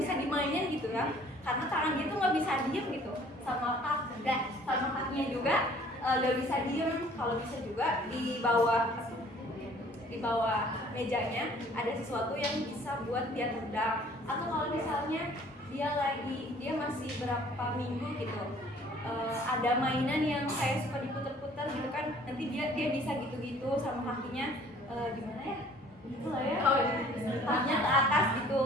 dimainin gitu ya, karena tangan dia tuh nggak bisa diem gitu, sama kakinya juga nggak bisa diem. Kalau bisa juga di bawah mejanya ada sesuatu yang bisa buat dia tendang, atau kalau misalnya dia masih berapa minggu gitu, ada mainan yang kayak suka diputer-puter gitu kan, nanti dia bisa gitu-gitu sama kakinya, gimana ya, gitu lah ya, kakinya ke atas gitu,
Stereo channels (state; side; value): normal; both; correlation 0.55